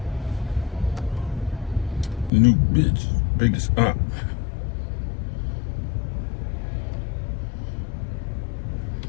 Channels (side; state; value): right; drops out; at 2.3 s